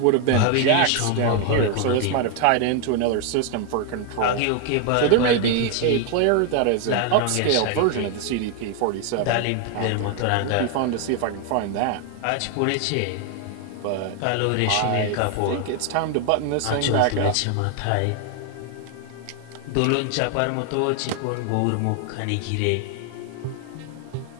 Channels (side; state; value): both; different; correlation 0.01